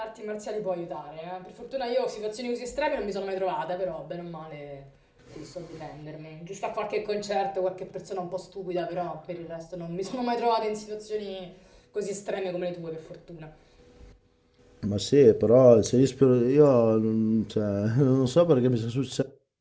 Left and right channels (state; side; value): identical; both; correlation 1.00